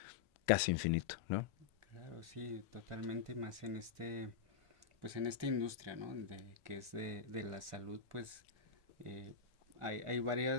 casi infinito, ¿no? Claro, sí, totalmente más en pues en esta industria, ¿no? Que es de la salud, pues eh, hay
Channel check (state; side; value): quieter; right; 6.7 dB